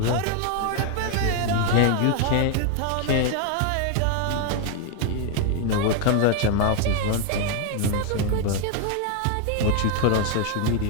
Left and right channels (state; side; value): different; both; correlation 0.01